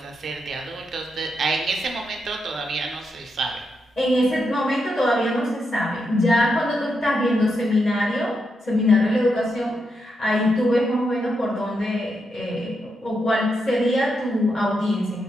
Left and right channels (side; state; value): both; normal; correlation 0.83